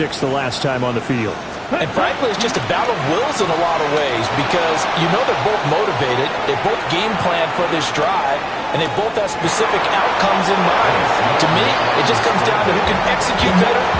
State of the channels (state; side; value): identical; both; correlation 1.00